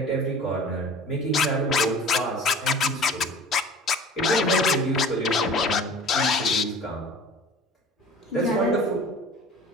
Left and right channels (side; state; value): both; normal; correlation 0.42